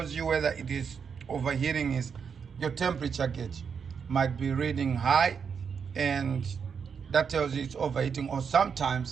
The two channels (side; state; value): left; quieter; 6.5 dB